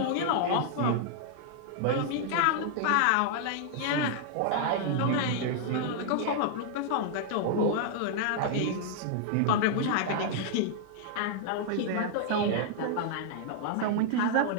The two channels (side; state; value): both; different; correlation -0.01